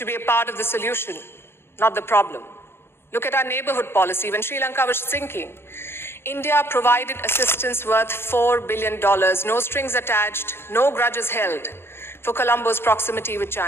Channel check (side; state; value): right; late; 0.11 ms